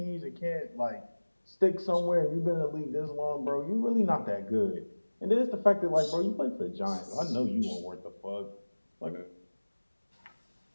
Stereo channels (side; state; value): both; inverted; correlation -1.00